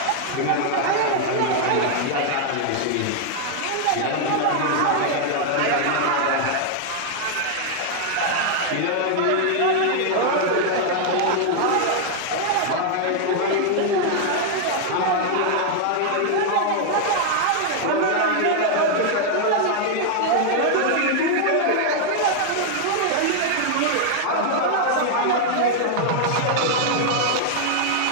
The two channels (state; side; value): different; both; correlation 0.00